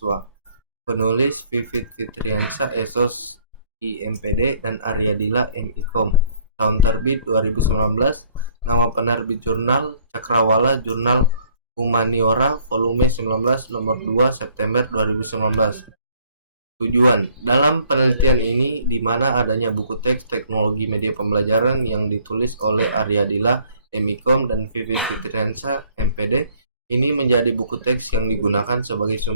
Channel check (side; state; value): both; inverted; correlation -0.61